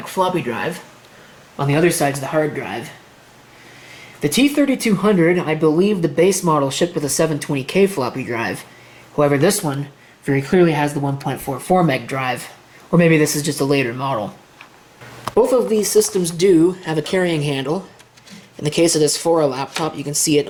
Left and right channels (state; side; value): identical; both; correlation 1.00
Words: floppy drive. On the other side's the hard drive. The T3200, I believe the base model shipped with a 720K floppy drive. However, this one very clearly has the 1.44 meg drive. Or maybe this is just a later model. Both of these systems do have a carrying handle. In the case of this Fora laptop, you can see it